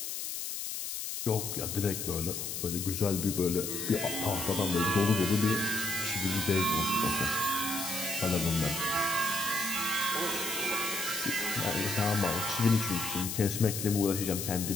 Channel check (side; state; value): left; noise; hiss, 5 dB below the sound